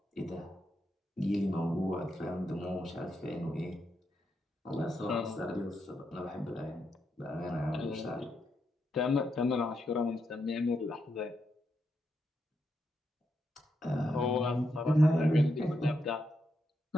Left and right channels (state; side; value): normal; both; correlation 0.82